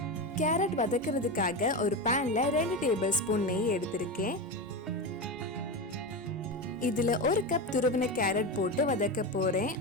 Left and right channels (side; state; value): both; normal; correlation 0.18